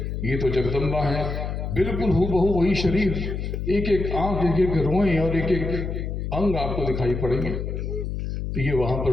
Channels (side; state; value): left; noise; hum, 4 dB below the sound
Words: ये तो जगदम्बा हैं, बिल्कुल हूबहू वही शरीर, एक एक आंख, एक एक रोएं और एक एक अंग आपको दिखाई पड़ेंगे। तो ये वहाँ